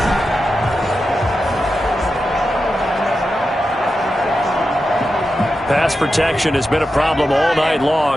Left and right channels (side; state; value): both; normal; correlation 0.90